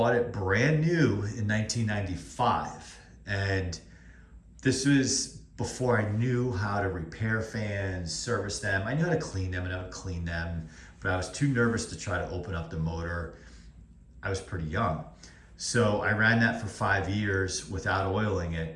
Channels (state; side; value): identical; both; correlation 1.00